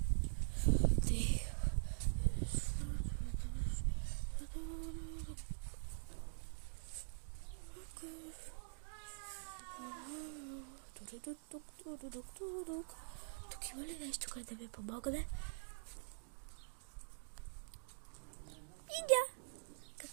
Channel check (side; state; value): left; silent; digital silence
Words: Тук има ли нещо, което да ми помогне? Иня,